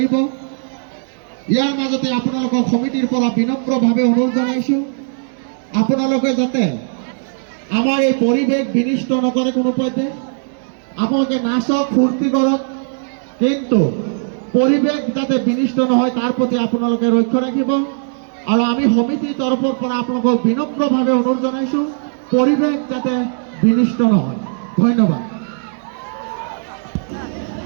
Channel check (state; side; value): silent; left; 60 dB below the other